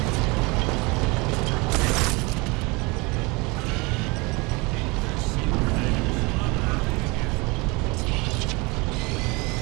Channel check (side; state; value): left; quieter; 26.4 dB